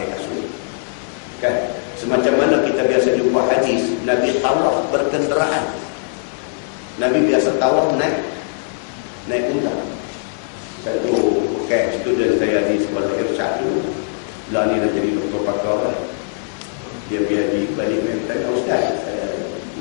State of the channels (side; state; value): right; silent; digital silence